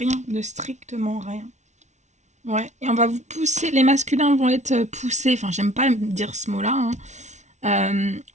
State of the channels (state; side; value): late; left; 0.33 ms